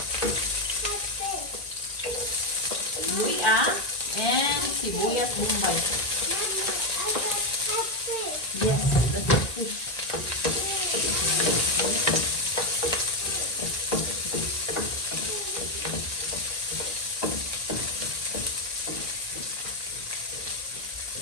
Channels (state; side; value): late; right; 1.9 ms